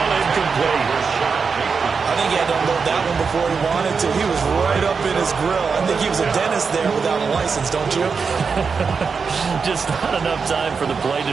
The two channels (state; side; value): quieter; left; 5.4 dB